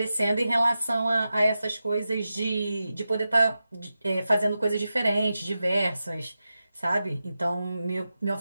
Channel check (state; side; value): inverted; both; correlation -0.92